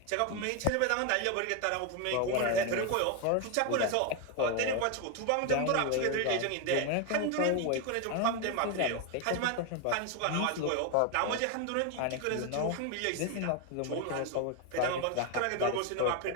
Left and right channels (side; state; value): both; different; correlation 0.01